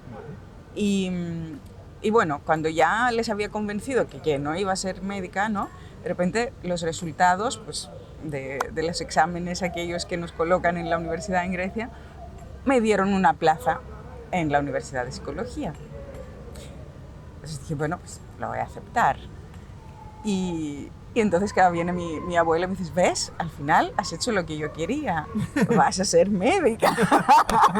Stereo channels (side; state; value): both; identical; correlation 1.00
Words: Y bueno, cuando ya les había convencido que no iba a ser médica, ¿no? De repente los resultados pues, de los exámenes aquellos que nos colocan en la universidad en Grecia me dieron una plaza en la Universidad de Psicología. Entonces dije, bueno, pues lo voy a aceptar. Y entonces cada viene mi abuela y me dice, ¿ves? Al final has hecho lo que yo quería, vas a ser médica.